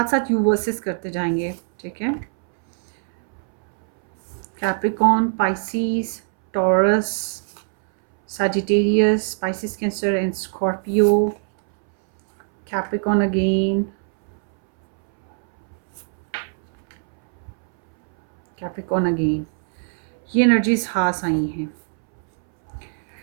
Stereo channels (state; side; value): silent; left; 64 dB below the other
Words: साथ यू वर्सेस करते जाएंगे, ठीक है। Capricorn, Pisces, taurus, Sagittarius, Pisces, Cancer and Scorpio, Capricorn again, Capricorn again, ये एनर्जीज हास आई हैं।